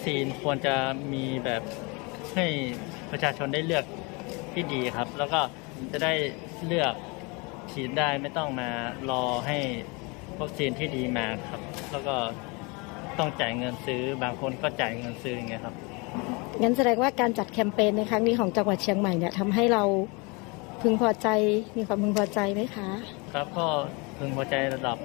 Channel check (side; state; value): right; quieter; 28.9 dB